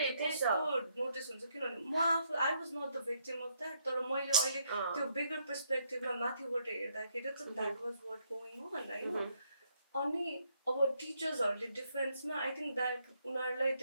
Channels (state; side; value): inverted; both; correlation -0.72